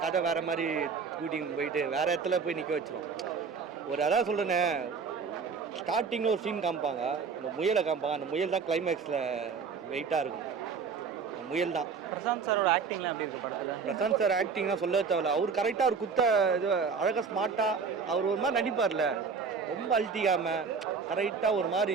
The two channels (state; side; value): quieter; left; 5.5 dB